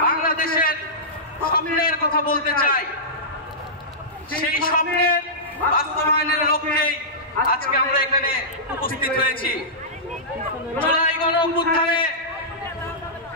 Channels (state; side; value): normal; both; correlation -0.16